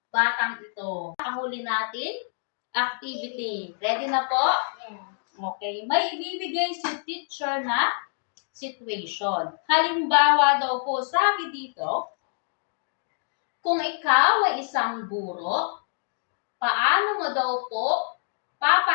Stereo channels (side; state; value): right; silent; 61 dB below the other